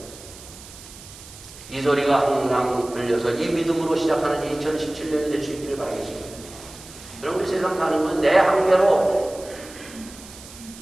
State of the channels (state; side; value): noise; right; hiss, 17 dB below the sound